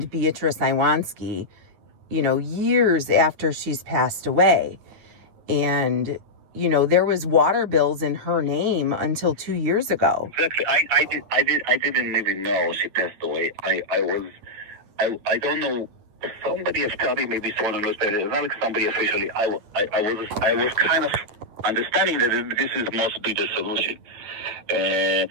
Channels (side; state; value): left; late; 9.7 ms